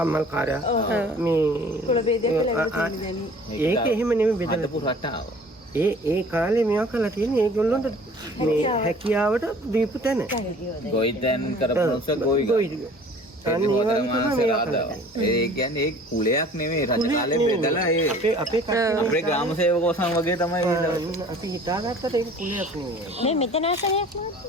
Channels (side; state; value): both; normal; correlation 0.49